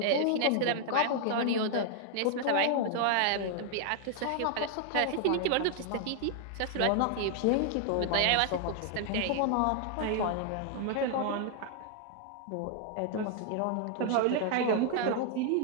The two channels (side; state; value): both; different; correlation 0.00